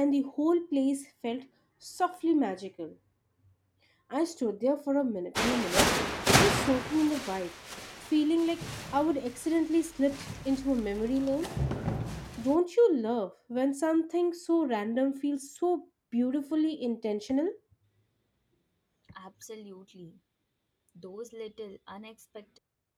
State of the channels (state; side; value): identical; both; correlation 1.00